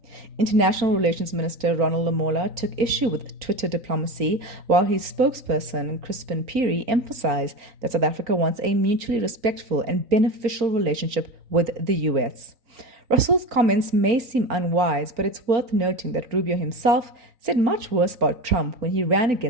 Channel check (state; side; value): late; left; 4.4 ms